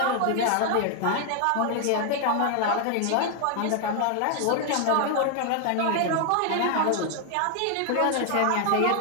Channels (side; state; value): both; different; correlation 0.00